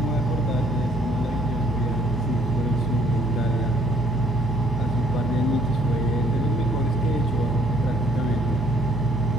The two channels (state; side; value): normal; both; correlation 0.63